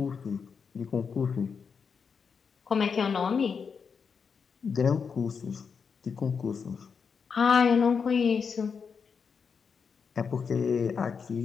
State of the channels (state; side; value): quieter; right; 6.0 dB